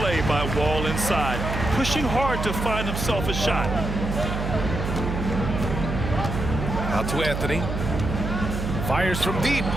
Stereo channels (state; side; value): noise; right; hum, 4 dB below the sound